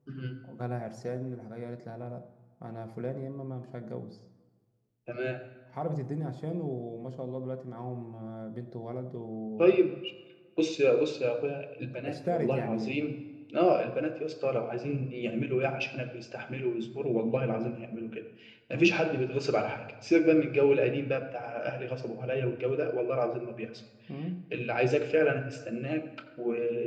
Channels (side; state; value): both; identical; correlation 1.00